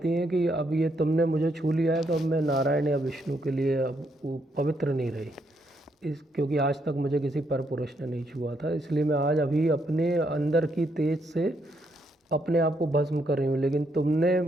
हैं कि अब ये तुमने मुझे छू लिया है तो अब मैं नारायण या विष्णु के लिए अब वो पवित्र नहीं रही, क्योंकि आज तक मुझे किसी पर पुरुष ने नहीं छुआ था, इसलिए मैं आज अभी अपने अंदर की तेज से अपने आप को भस्म कर रही हूँ। लेकिन तुमने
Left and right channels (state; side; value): normal; both; correlation 0.76